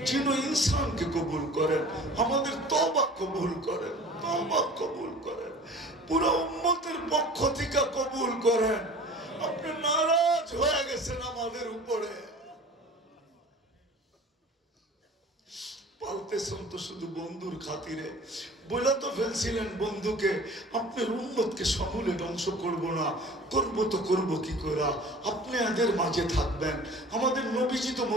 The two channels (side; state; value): both; normal; correlation 0.43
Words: জিন ও ইনসানকে কবুল করেন, আমাদের তওবা কবুল করেন, তওবা কবুল করেন, পুরো উম্মতের পক্ষ থেকে কবুল করেন। আপনি নারাজ হয়ে গেছেন আমাদের উপরে, পালতেছেন তো শুধু বন্ধুর খাতিরে। বলে তো ফেলছিলেন বন্ধুকে, আপনার উম্মতকে সমূলে ধ্বংস করব না, করব তো করব কি করে, আপনি এদের মাঝে থাকবেন। আমাদের নবীজি তো